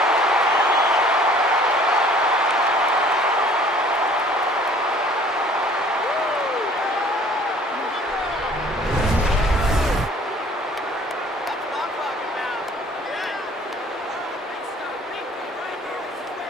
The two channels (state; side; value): normal; both; correlation 0.53